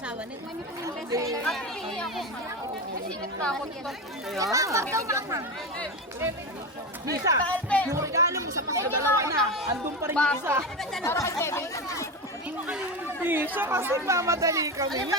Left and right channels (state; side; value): normal; both; correlation 0.19